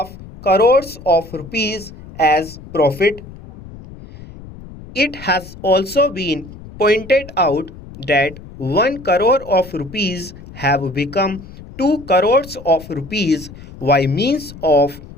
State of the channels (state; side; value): noise; left; rumble, 17 dB below the sound